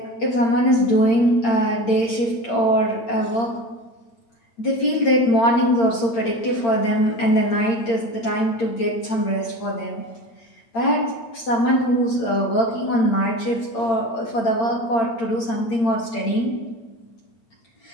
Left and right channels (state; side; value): late; right; 8.8 ms